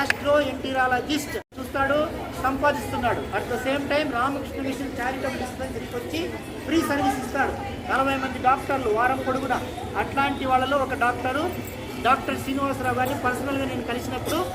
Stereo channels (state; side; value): identical; both; correlation 1.00